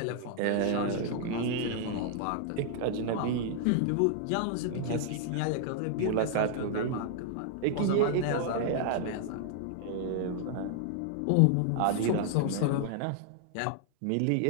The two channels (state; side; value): different; both; correlation 0.00